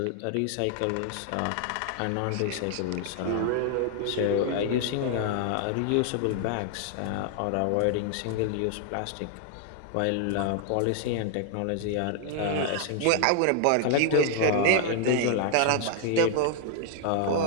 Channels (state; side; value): different; both; correlation 0.00